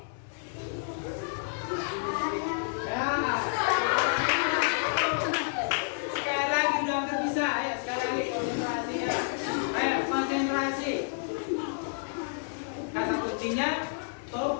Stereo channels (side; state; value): right; silent; digital silence